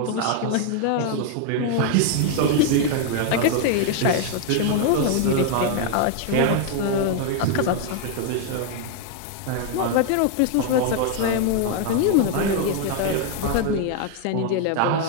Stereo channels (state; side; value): different; both; correlation 0.00